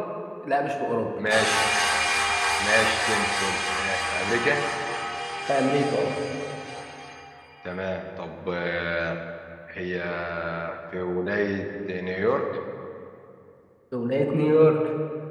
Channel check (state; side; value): identical; both; correlation 1.00